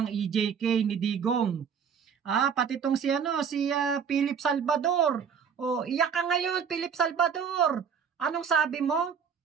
EJK ni Digong. Pati itong si Philip Salvador. Iyak ka ngayon, Philip Salvador. Anong sabi mo?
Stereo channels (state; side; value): quieter; left; 7.0 dB